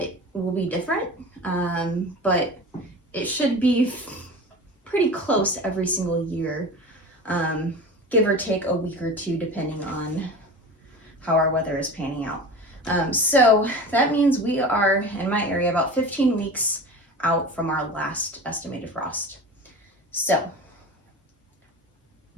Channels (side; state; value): both; normal; correlation 0.33